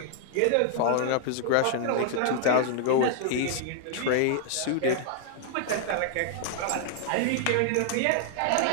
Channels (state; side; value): different; both; correlation -0.01